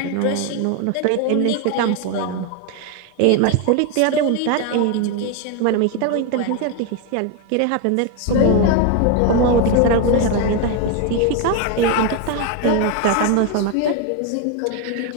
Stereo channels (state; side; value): different; both; correlation 0.02